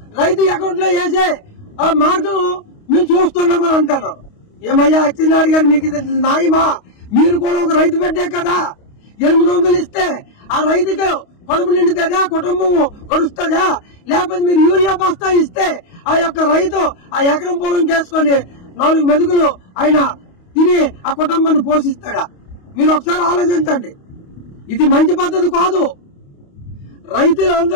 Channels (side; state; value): right; late; 28 ms